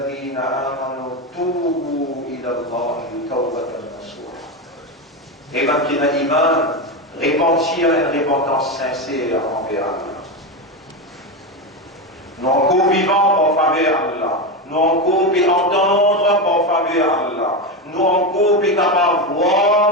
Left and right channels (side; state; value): both; normal; correlation 0.15